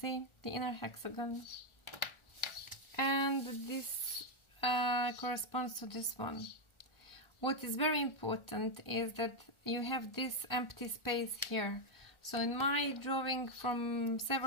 the inner hexagon. And this corresponds to this one. What is very important is that you have this empty space here. So in my drawing from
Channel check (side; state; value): right; late; 1.4 ms